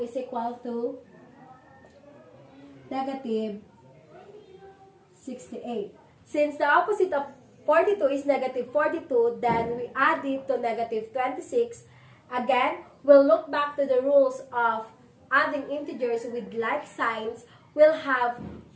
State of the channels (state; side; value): identical; both; correlation 1.00